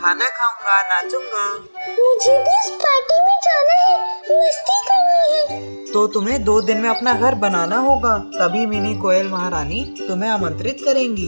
खाऊंगा, नाचूंगा। मुझे भी इस पार्टी में जाना है, मस्ती करनी है। तो तुम्हें 2 दिन में अपना घर बनाना होगा, तभी मिनी कोयल महारानी तुम्हें आमंत्रित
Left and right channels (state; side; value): inverted; both; correlation -1.00